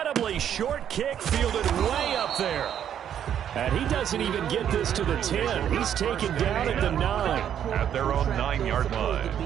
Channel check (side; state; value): left; quieter; 9.5 dB